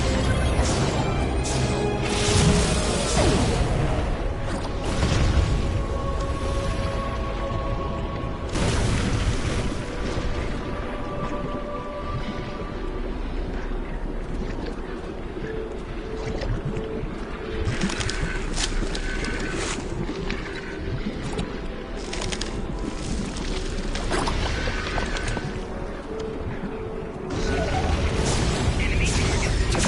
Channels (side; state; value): both; identical; correlation 1.00